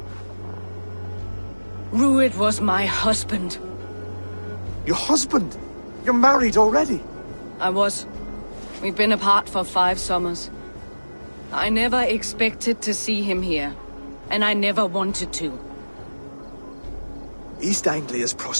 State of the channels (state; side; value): inverted; both; correlation -1.00